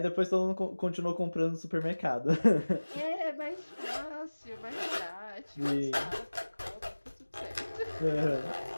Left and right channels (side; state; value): both; inverted; correlation -1.00